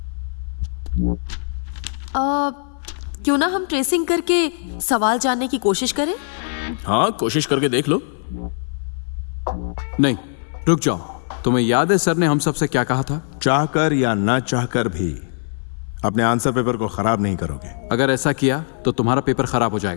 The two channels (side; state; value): right; silent; 62 dB below the other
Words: क्यों ना हम ट्रेसिंग करके सवाल जानने की कोशिश करें? हाँ, कोशिश करके देख लो। नहीं, रुक जाओ। तुम्हें याद है सर ने हम सबसे क्या कहा था? चाहकर या ना चाहकर भी अपने आंसर पेपर को खराब नहीं करोगे। अगर ऐसा किया तो तुम्हारा पेपर खराब हो